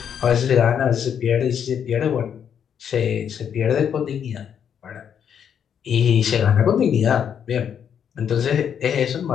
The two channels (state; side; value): quieter; right; 8.2 dB